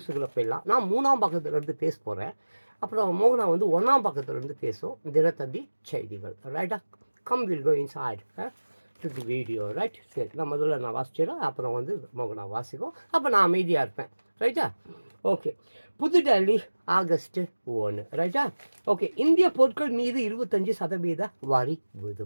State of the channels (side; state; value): both; inverted; correlation -1.00